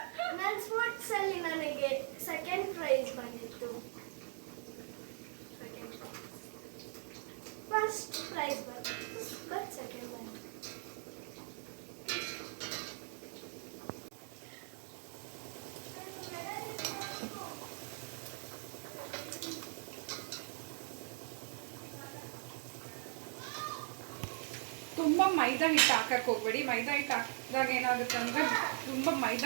ನನ್ನ ಸ್ಪೋರ್ಟ್ಸ್ ಅಲ್ಲಿ ನನಗೆ ಸೆಕೆಂಡ್ ಪ್ರೈಸ್ ಬಂದಿತ್ತು. ಫಸ್ಟ್ ಪ್ರೈಸ್ ಬಂದಿತ್ತು, ಬಟ್ ಸೆಕೆಂಡ್ ಬಂದಿತ್ತು. ತುಂಬ ಮೈದಾ ಹಿಟ್ಟು ಹಾಕಕ್ಕೆ ಹೋಗ್ಬೇಡಿ. ಮೈದಾ ಹಿಟ್ಟು ಹಾಕಿದಾಗ ಏನಾಗುತ್ತೆ ಅಂದರೆ ತುಂಬ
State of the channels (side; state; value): left; silent; 51 dB below the other